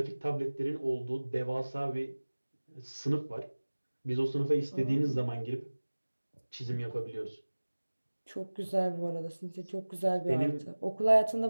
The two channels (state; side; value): inverted; both; correlation -1.00